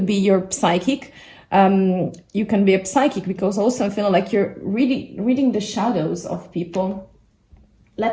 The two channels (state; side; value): identical; both; correlation 1.00